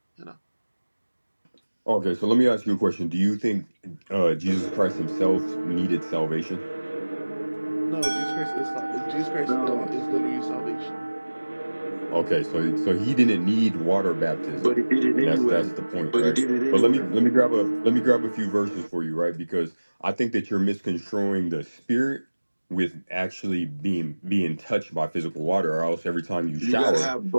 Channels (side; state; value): both; inverted; correlation -1.00